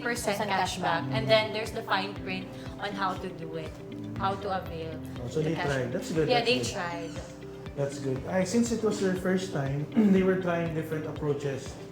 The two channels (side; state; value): both; identical; correlation 1.00